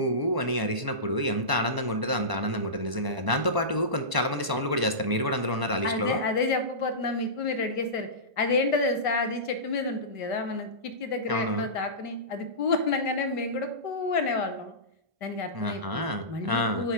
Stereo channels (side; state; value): left; late; 1.0 ms